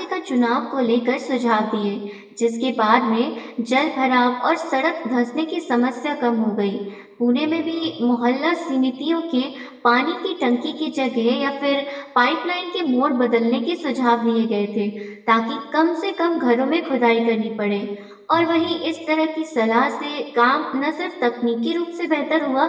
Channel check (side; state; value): both; identical; correlation 1.00